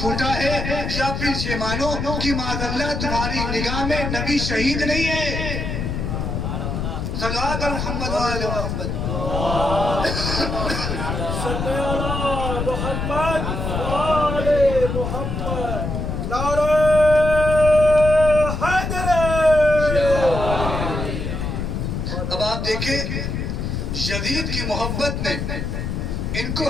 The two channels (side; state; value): left; noise; rumble, 3 dB below the sound